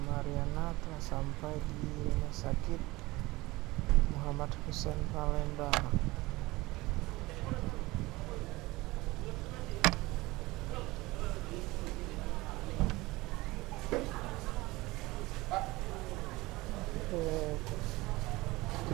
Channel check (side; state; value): left; quieter; 20.8 dB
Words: Mariana telah sampai di rumah sakit Muhammad Husein Palembang.